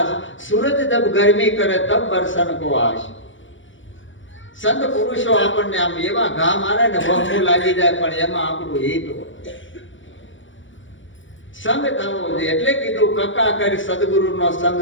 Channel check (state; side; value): late; right; 0.56 ms